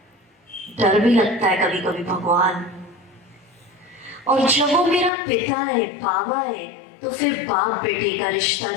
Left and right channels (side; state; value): right; drops out; at 5.1 s